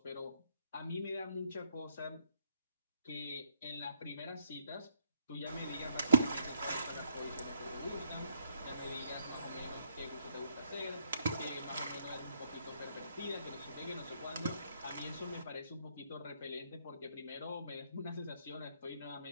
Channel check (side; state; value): both; inverted; correlation -0.69